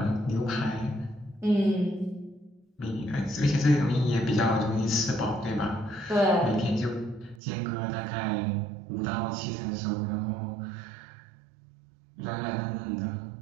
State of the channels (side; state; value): left; drops out; at 7.4 s